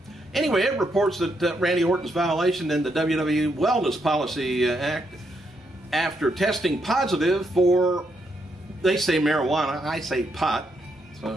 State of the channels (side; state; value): both; normal; correlation 0.78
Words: Anyway, it reports that Randy Orton's violation in the WWE Wellness Policy Act after testing positive for, they say marijuana, I say pot,